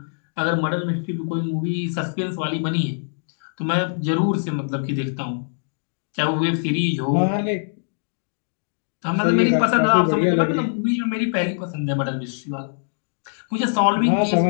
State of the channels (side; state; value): right; silent; digital silence